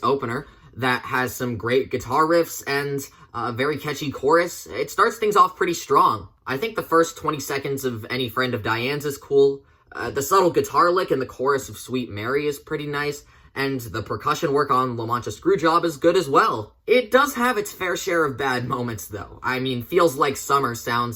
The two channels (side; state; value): both; identical; correlation 1.00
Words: opener that has some great guitar riffs and a very catchy chorus. It starts things off pretty strong. I think the first 20 seconds of Any Friend of Diane's is cool. The subtle guitar lick in the chorus of Sweet Mary is pretty nice, and the percussion work on La Mancha Screwjob is good as well. It does have its fair share of bad moments, though. I mean, Feels Like Summer